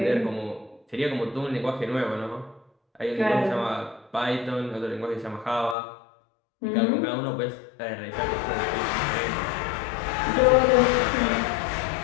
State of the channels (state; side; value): drops out; right; at 5.8 s